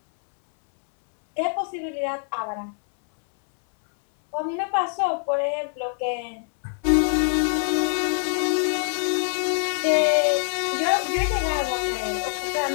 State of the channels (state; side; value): silent; right; 62 dB below the other